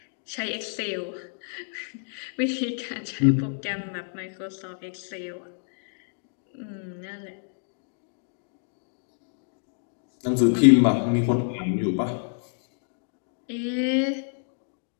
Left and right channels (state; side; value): silent; right; 59 dB below the other